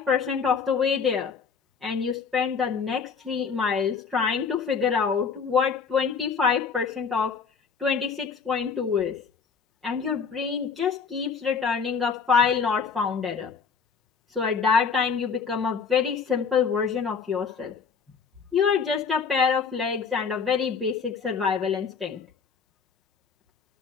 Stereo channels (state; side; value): quieter; right; 5.8 dB